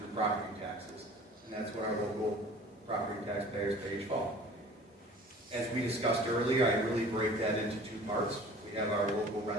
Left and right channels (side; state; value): both; normal; correlation 0.46